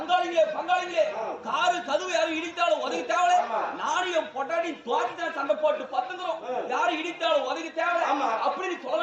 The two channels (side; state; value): both; identical; correlation 1.00